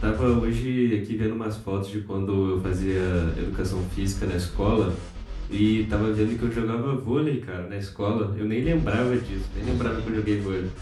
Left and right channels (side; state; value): both; identical; correlation 1.00